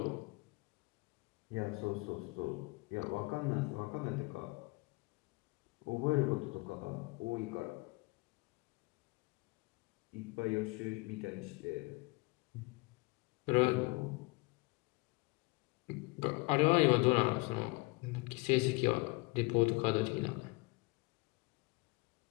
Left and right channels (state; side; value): quieter; right; 26.0 dB